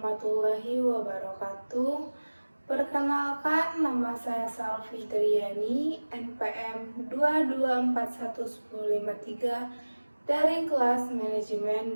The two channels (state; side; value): inverted; both; correlation -1.00